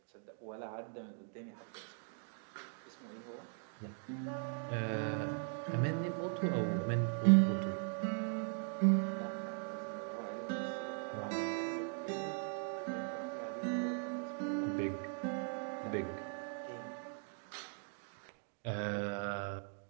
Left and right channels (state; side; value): silent; left; 51 dB below the other